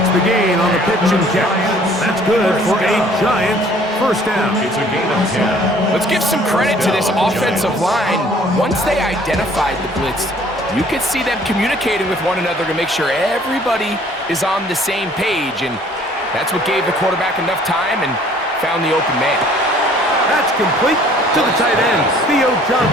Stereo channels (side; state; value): both; normal; correlation 0.56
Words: the gain on the pitch and catch. That's good for a Giants first down. It's a gain of 10. Let's give some credit to this offensive line. Once they identified the blitz, you could see them communicating with one another to make sure everybody is on the same page. And that's what gave the quarterback enough time and found the open man. That's complete to the tight end, Theo